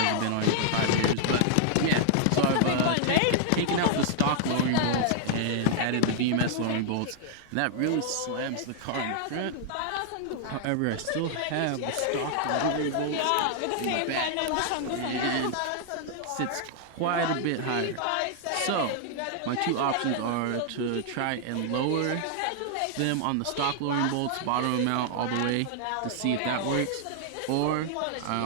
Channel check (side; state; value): both; different; correlation -0.01